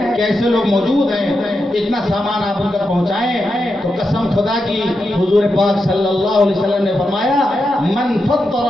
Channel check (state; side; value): normal; both; correlation 0.87